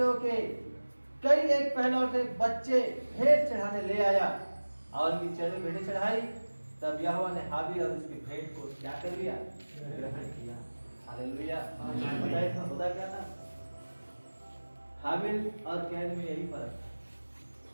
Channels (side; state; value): both; inverted; correlation -1.00